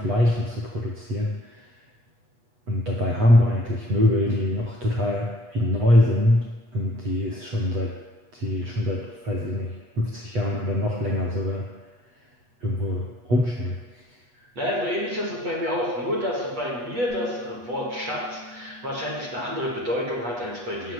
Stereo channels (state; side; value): late; left; 8.2 ms